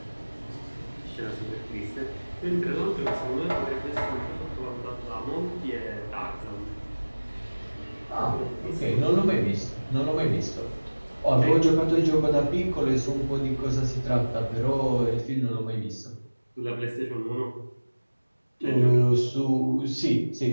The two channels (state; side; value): inverted; both; correlation -1.00